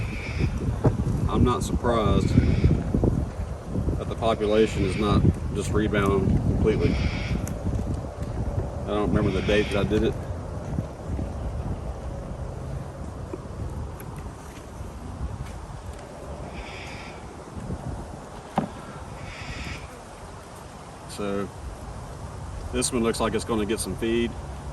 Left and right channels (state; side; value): identical; both; correlation 1.00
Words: I'm not surprised that the population is not just rebounding completely. I don't remember the date that I did it. So this one looks like it's going to get some feed.